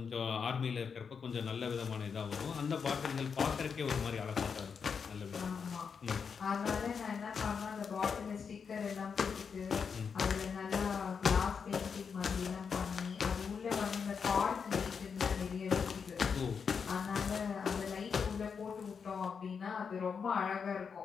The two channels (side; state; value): right; quieter; 6.1 dB